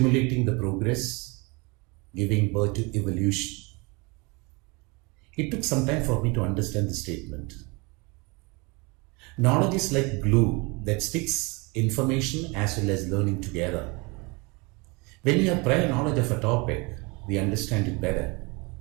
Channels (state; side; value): quieter; left; 28.0 dB